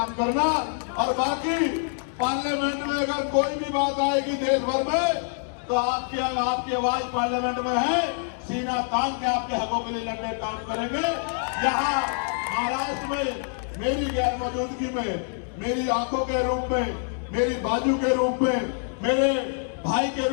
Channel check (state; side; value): silent; right; 61 dB below the other